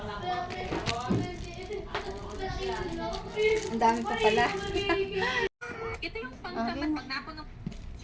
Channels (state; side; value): identical; both; correlation 1.00